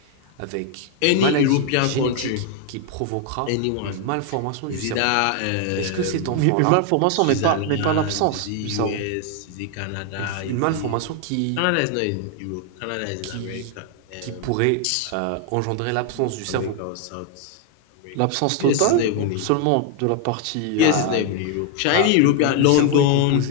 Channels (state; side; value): different; both; correlation 0.00